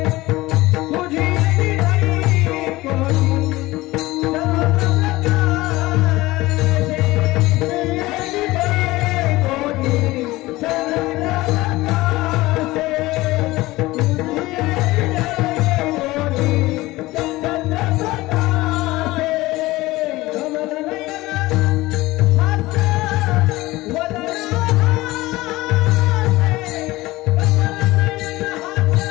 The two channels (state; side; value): quieter; right; 19.2 dB